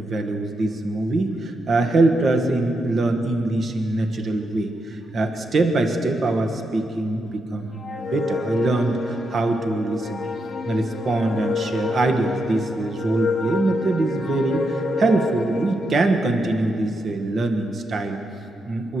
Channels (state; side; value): normal; both; correlation 0.83